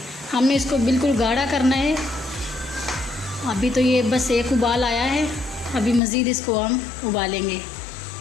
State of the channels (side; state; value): right; drops out; at 6.0 s